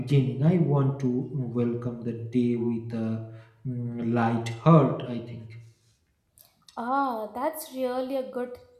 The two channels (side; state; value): both; identical; correlation 1.00